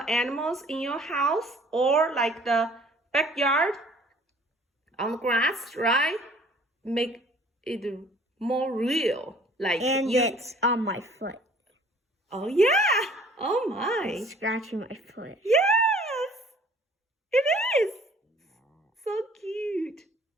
animals in your house or like the backyard on the grass, right? Make it more real. Like And you... it's on my foot. Oh yeah! Oh my! Scratching my foot. Yes! It is! So cute.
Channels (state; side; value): normal; both; correlation 0.54